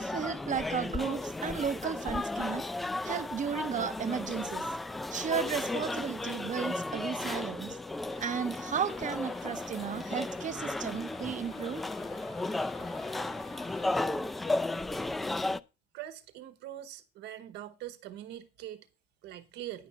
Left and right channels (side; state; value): both; normal; correlation 0.62